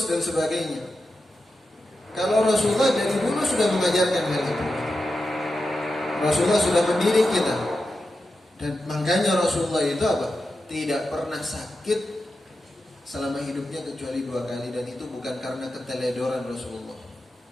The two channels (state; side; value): normal; both; correlation 0.90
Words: dan sebagainya. Kalau Rasulullah dari dulu sudah mengajarkan hal itu. Rasulullah sudah mendidik kita. Dan makanya Rasulullah itu apa? Tidak pernah sakit selama hidupnya kecuali 2 kali, dan itu bukan karena keteledoran Rasulullah,